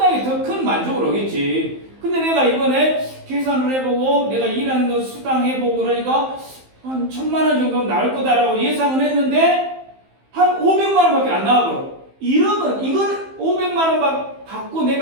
더 큰 만족을 오겠지. 근데 내가 이번에 계산을 해보고 내가 일하는 거 수당해보고 그러니까 한 1,000만 원 정도는 나올 거다라고 예상을 했는데 한 500만 원밖에 안 나와버려. 이러면 이건 500만 원 받고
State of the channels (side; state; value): left; late; 15 ms